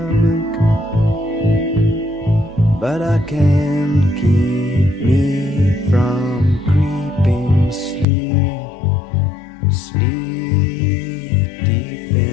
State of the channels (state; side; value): drops out; right; at 8.1 s